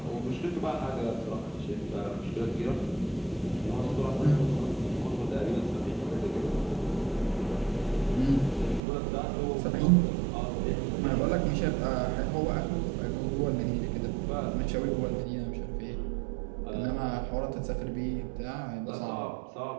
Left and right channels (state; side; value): drops out; left; at 8.8 s